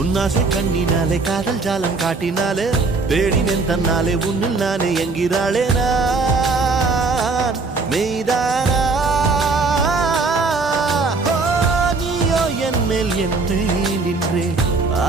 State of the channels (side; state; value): left; quieter; 4.0 dB